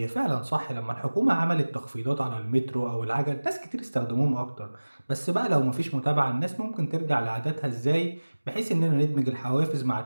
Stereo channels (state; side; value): inverted; both; correlation -1.00